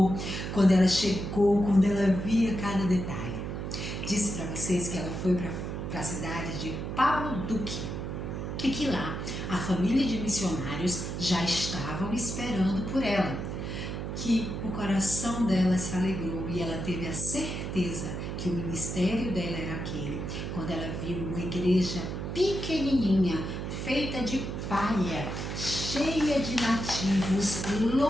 quando ela chegou, quando ela via cada detalhe. Disse para vocês que ela foi para a cidade de Pablo Duque e que lá a família de missionários já estavam esperando por ela. Que o coração dela se alegrou e ela teve a certeza que o ministério dela era aquele, quando ela viu uma igreja pequenininha, feita de palha, cheia de nativos,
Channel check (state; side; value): noise; right; hum, 5 dB below the sound